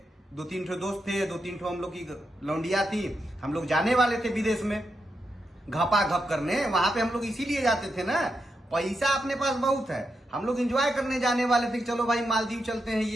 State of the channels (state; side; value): normal; both; correlation 0.85